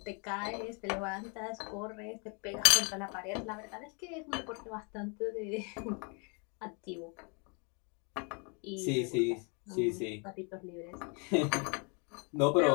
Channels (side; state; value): right; quieter; 35.6 dB